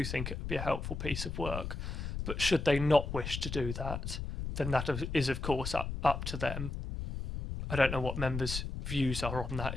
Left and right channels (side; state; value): left; noise; rumble, 5 dB below the sound